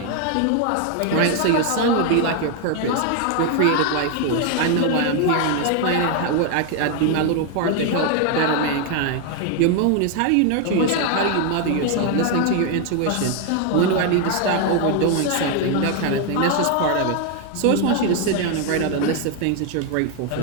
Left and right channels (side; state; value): both; different; correlation 0.01